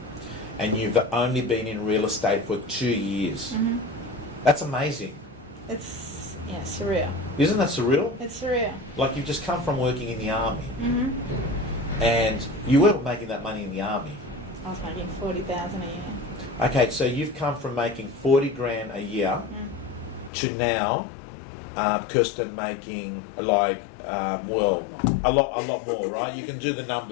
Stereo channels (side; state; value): right; drops out; at 20.3 s